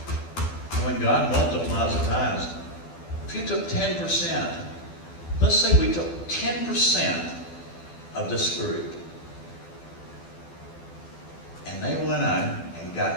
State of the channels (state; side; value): late; right; 12 ms